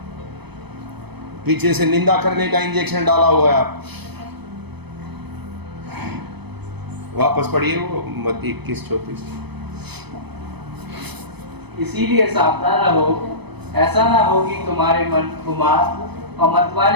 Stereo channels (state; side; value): late; left; 0.98 ms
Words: पीछे से निंदा करने का इंजेक्शन डाला हुआ है आपको। वापस पढ़िए वो मत्ती 21:34। इसीलिए सावधान रहो, ऐसा ना हो कि तुम्हारे मन खुमार और